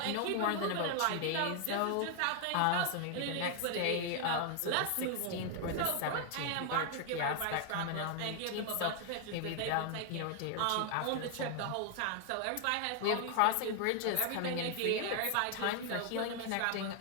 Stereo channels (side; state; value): both; different; correlation 0.00